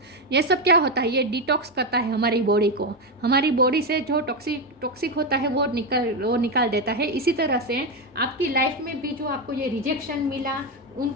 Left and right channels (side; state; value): both; normal; correlation 0.10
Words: ये सब क्या होता है, ये डिटॉक्स करता है हमारी बॉडी को। हमारी बॉडी से जो टॉक्सिक होता है वो निकाल देता है। इसी तरह से आपकी लाइफ में भी जो आपको ये रिजेक्शन मिला,